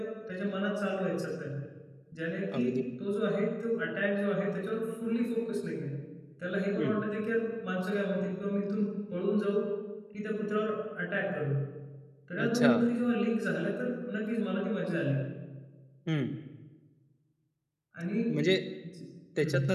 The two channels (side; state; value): both; identical; correlation 1.00